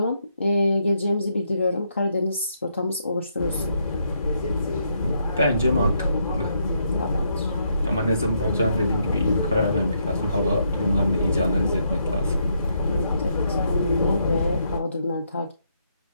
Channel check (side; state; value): both; inverted; correlation -0.76